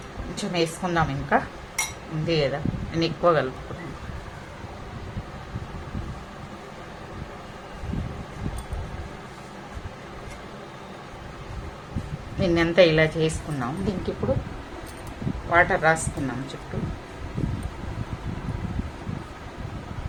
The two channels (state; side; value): identical; both; correlation 1.00